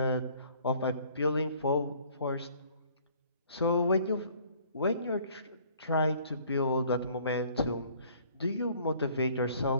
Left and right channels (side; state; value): both; inverted; correlation -0.57